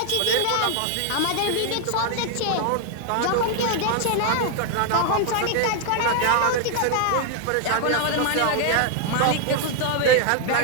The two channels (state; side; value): different; both; correlation 0.00